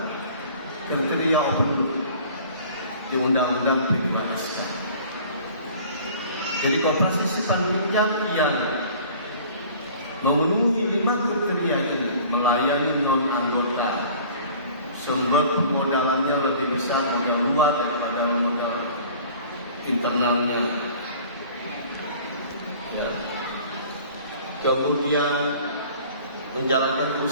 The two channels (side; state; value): both; inverted; correlation -0.47